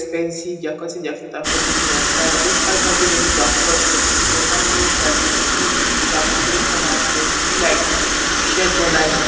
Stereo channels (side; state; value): both; identical; correlation 1.00